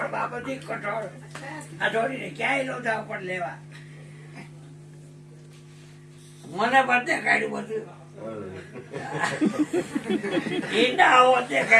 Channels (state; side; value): identical; both; correlation 1.00